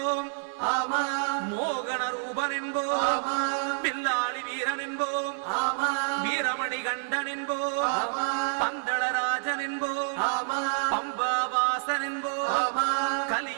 மோகன ரூபன் என்போம், பில்லாளி வீரன் என்போம், வீரமணி கண்டன் என்போம், பந்தளராஜன் என்போம், பம்பாவாசன் என்போம்,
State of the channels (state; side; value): silent; left; 59 dB below the other